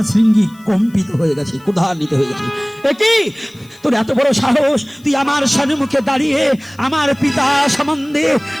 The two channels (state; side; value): noise; left; hiss, 28 dB below the sound